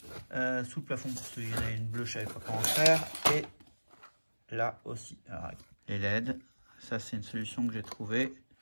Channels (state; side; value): inverted; both; correlation -1.00